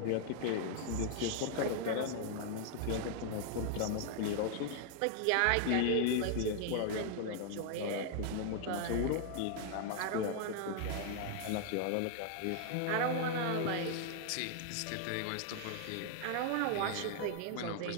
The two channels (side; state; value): both; different; correlation 0.00